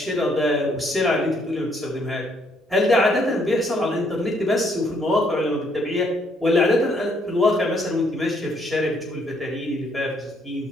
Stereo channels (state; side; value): normal; both; correlation 0.69